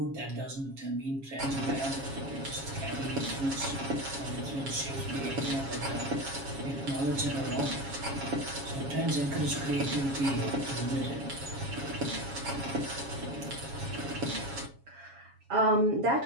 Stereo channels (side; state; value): left; late; 7.3 ms